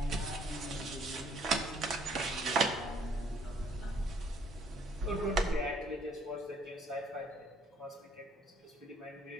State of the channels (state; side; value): normal; both; correlation 0.63